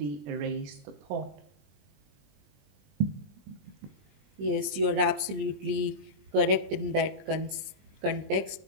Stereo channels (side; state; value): left; late; 20 ms